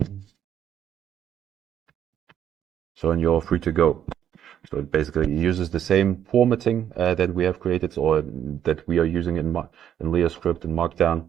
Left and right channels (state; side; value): quieter; left; 9.8 dB